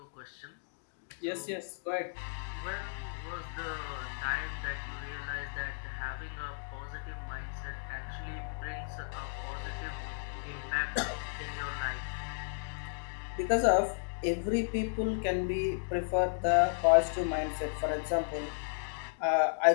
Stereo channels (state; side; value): silent; right; digital silence